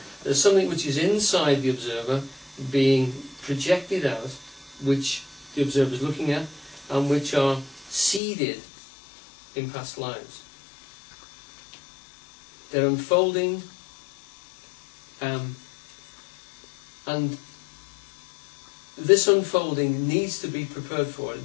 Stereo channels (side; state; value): right; drops out; at 8.2 s